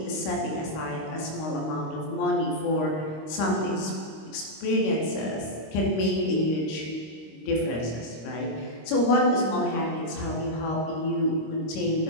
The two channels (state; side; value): late; right; 26 ms